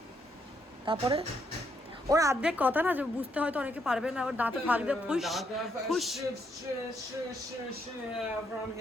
তারপরে ওর অর্ধেক কথা না যে বুঝতে হয়তো অনেকে পারবে না, ওর দাঁতে ফাঁক দিয়ে ফুস ফুস। from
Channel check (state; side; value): normal; both; correlation 0.75